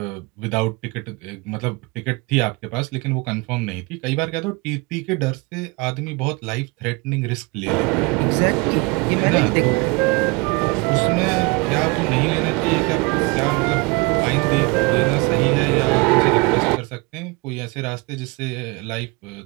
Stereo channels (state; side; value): quieter; left; 27.2 dB